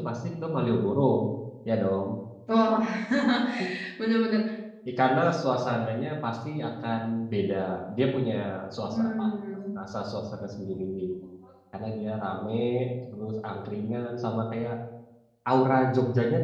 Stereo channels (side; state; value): both; identical; correlation 1.00